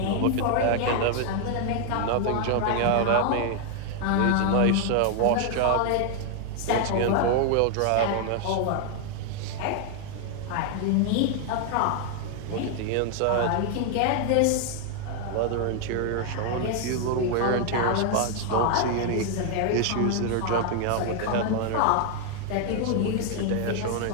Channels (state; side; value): different; both; correlation 0.00